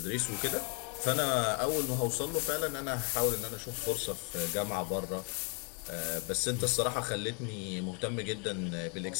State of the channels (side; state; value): right; quieter; 37.1 dB